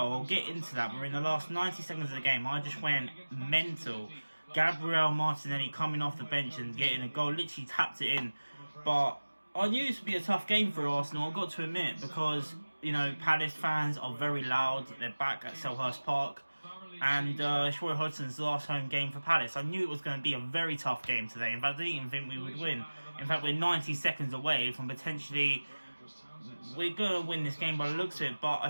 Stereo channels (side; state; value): both; inverted; correlation -1.00